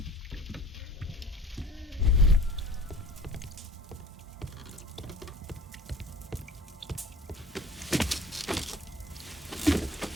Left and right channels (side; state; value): both; normal; correlation 0.45